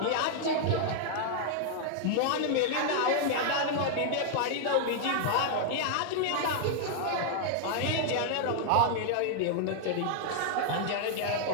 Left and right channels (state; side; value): different; both; correlation 0.00